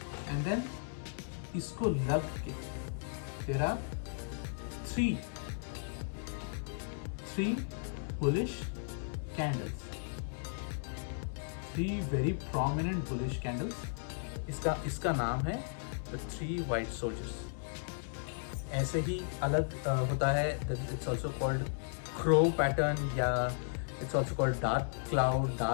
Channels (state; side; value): silent; right; 54 dB below the other